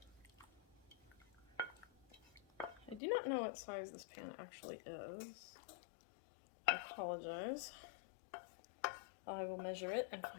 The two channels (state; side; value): drops out; right; at 3.0 s